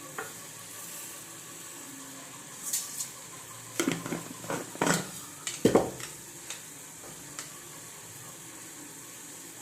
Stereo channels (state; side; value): identical; both; correlation 1.00